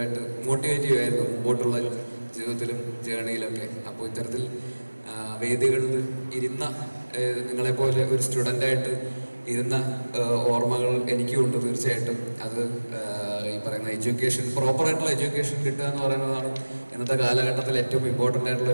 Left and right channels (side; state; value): both; inverted; correlation -1.00